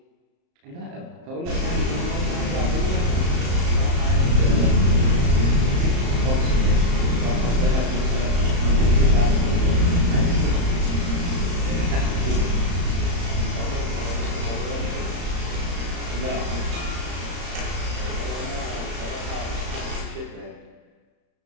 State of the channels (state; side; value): late; left; 34 ms